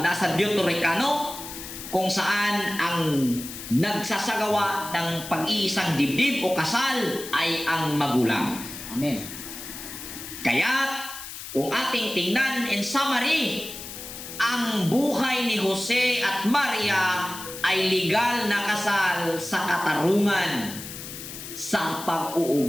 nasa Deuterocanonico, kung saan ang nagsasagawa ng pag-iisang dibdib o kasal ay ang magulang. Amen. Kaya kung ating tingnan in summary, ang buhay ni Jose at Maria ay legal na kasal sa katarungan sa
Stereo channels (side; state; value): left; noise; hiss, 11 dB below the sound